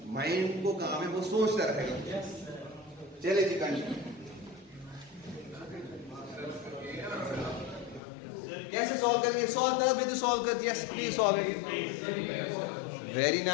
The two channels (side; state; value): right; drops out; at 8.0 s